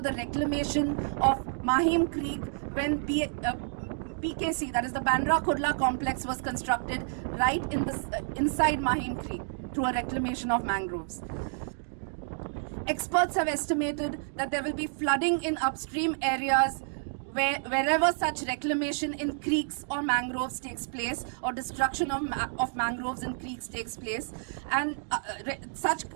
the reclamation of Mahim Creek when PKC, that is the Bandra Kurla complex, was constructed right inside Mahim Creek through a reclamation of mangroves. Experts have estimated that there will be flooding in upstream areas wherever such reclamation in creeks or mangroves takes place, or destruction of mangroves and creeks takes place, and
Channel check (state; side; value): silent; left; digital silence